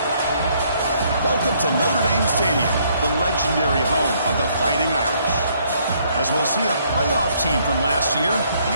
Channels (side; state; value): both; inverted; correlation -0.67